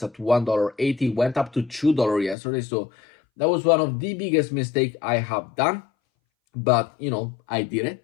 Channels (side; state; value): right; drops out; at 2.4 s